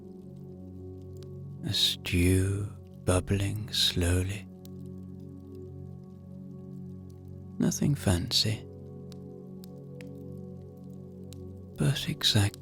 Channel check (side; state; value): both; identical; correlation 1.00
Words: a stew bubbling slowly. Nothing fancy, but